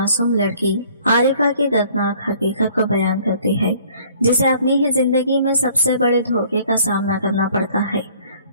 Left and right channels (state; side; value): inverted; both; correlation -0.56